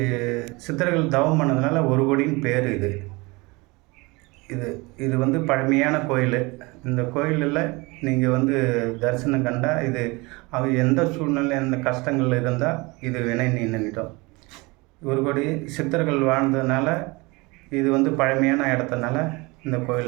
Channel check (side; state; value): left; quieter; 25.0 dB